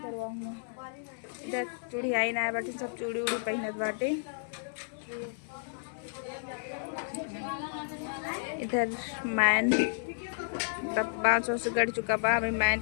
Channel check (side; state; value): right; silent; digital silence